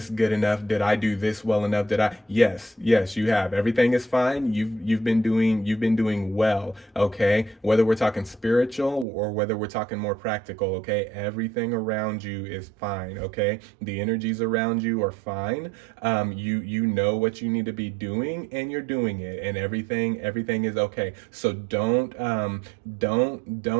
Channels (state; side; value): drops out; left; at 9.1 s